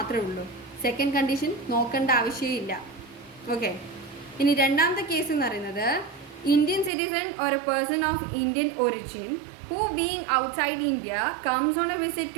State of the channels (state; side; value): drops out; left; at 6.9 s